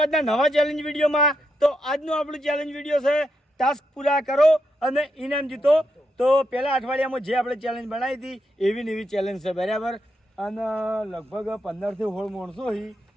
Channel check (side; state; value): both; normal; correlation 0.82